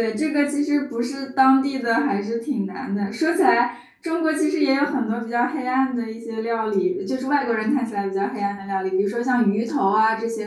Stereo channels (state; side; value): identical; both; correlation 1.00